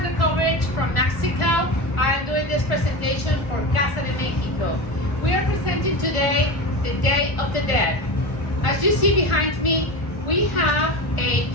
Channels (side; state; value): right; late; 1.4 ms